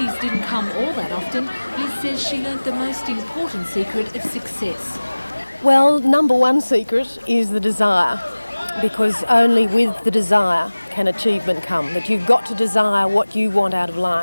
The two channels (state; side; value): inverted; both; correlation -1.00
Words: didn't come all that often, Liz says she learnt the most important secret of success. Well, number one secret is the desire, because only with the desire can achievement come. That you've got to desire what you want out of